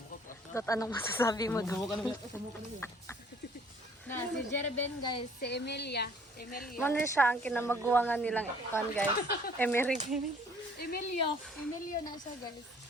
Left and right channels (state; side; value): normal; both; correlation 0.57